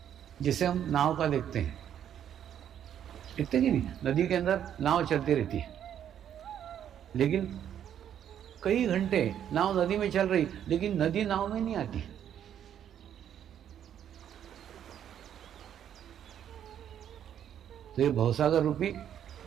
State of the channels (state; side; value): quieter; left; 9.7 dB